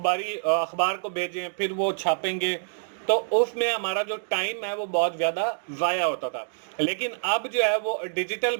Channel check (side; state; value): left; silent; digital silence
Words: को भेजें, फिर वो छापेंगे, तो उसमें हमारा जो टाइम है वो बहुत ज़्यादा ज़ाया होता था। लेकिन अब जो है वो डिजिटल